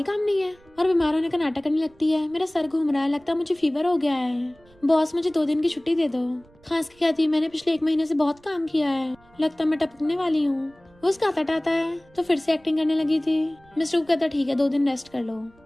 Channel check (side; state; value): right; noise; rumble, 29 dB below the sound